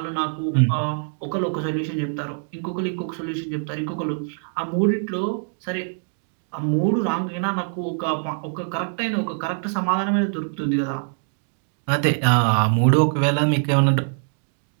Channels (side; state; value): left; silent; digital silence